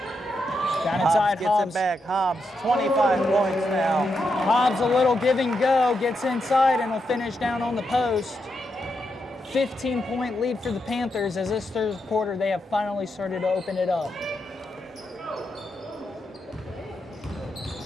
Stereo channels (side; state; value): both; normal; correlation 0.84